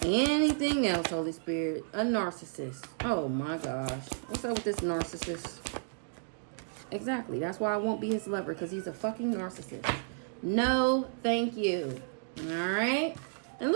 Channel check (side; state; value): left; silent; digital silence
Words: Anything else, Holy Spirit? A narcissist. Oh my gosh. What's up with this narcissist? Exactly. That's why I won't be his lover, because he's a fucking narcissist. No, thank you. All right. And